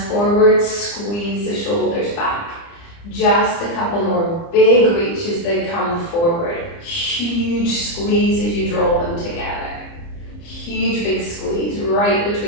forward, squeeze the shoulders back. Just a couple more big reaches, they come forward. Huge squeeze as you draw them together. Huge big squeeze right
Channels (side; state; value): right; late; 30 ms